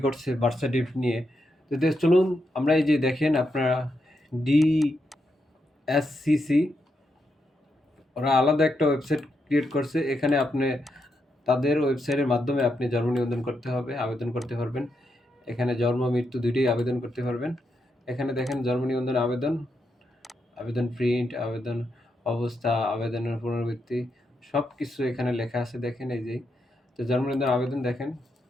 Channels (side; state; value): both; normal; correlation 0.83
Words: করছে বার্থ সার্টিফিকেট নিয়ে। তো চলুন আমরা এই যে দেখেন আপনারা ডিএসসিসি ওরা আলাদা একটা ওয়েবসাইট ক্রিয়েট করছে। এখানে আপনি তাদের ওয়েবসাইটের মাধ্যমে আপনি জন্ম নিবন্ধন করতে হবে, আবেদন করতে পারবেন। এখানে জন্ম মৃত্যু দুইটাই আবেদন করতে পারবেন। এখানে দেখেন জন্ম নিবন্ধন আবেদন, আবেদন প্রিন্ট, আবেদন অবস্থা, আবেদনের পুনরাবৃত্তি সব কিছু এখানে লেখা আছে। দেখেন এই যে তো জন্ম নিবন্ধন আবেদন দেখেন